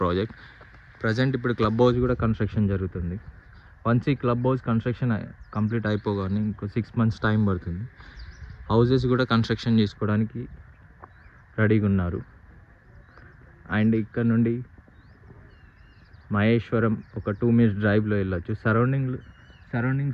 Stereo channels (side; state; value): both; identical; correlation 1.00